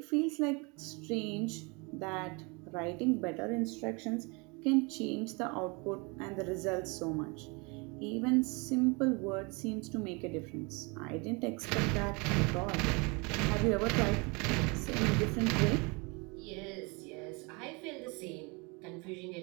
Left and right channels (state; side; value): quieter; left; 29.4 dB